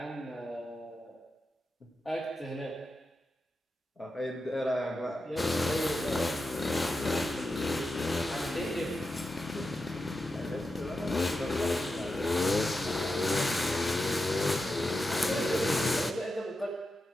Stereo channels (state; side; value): normal; both; correlation 0.89